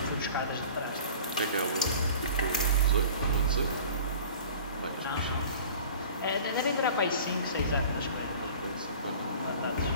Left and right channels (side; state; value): both; inverted; correlation -0.43